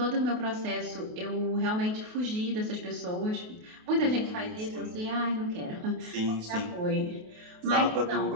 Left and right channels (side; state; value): left; late; 28 ms